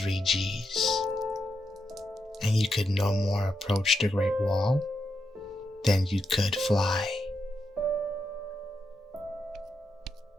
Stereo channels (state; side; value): normal; both; correlation 0.84